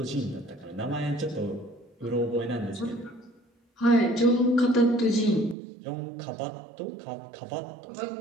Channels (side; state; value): left; drops out; at 5.6 s